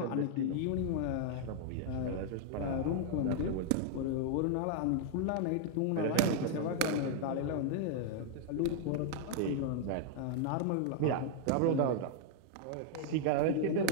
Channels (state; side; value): different; both; correlation -0.01